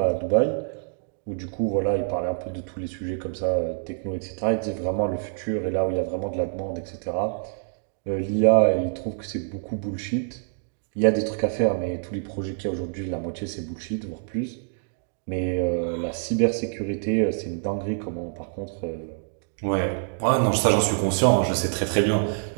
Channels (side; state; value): left; silent; digital silence